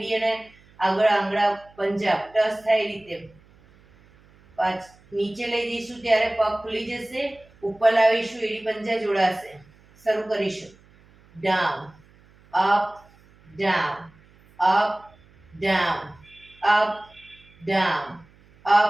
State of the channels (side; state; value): right; noise; hum, 28 dB below the sound